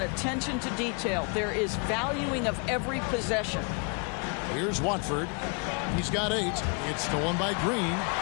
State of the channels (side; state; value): right; quieter; 36.3 dB